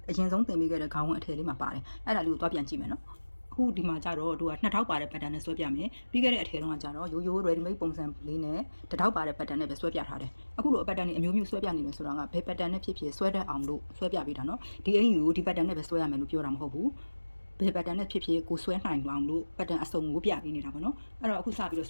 ရင်ဆုံးသင်ပေးခဲ့တဲ့ခေါင်းဝင်အထည်လေးမှာပါတယ်အဲ့ဒါလေးကိုသွားပြန်ကြည့်မယ်နော်အခုဒီမှာကြတော့တို့က2000ပါတဲ့ pattern နဲ့ဆွဲပြမယ်ပြီးခဲ့တဲ့အထည်တုန်းကကြတော့ရိုးရိုး ready made ပုံစံလေးနဲ့1000ပါတဲ့ pattern နဲ့ပဲဆွဲပြထားတယ်အခုလို pattern တွေအမျိုးမျိုးဆွဲပြနေတယ်ဆိုတာကဘယ် pattern နဲ့ဖြစ်ဖြစ်ဆွဲတတ်အောင်လို့ဆွဲပြပေးတာနော်ဒီအင်ယူကိုဒီ pattern နဲ့ပဲဆွဲရမယ်လို့ပြောတာမဟုတ်ဘူးဘယ် pattern နဲ့ဖြစ်ဖြစ်ကိုဆွဲနိုင်အောင်လို့ pattern အစုံကိုပြပေးနေတာပေါ့နော်အဲ့တော့အခုစပြီးတော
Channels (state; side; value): inverted; both; correlation -1.00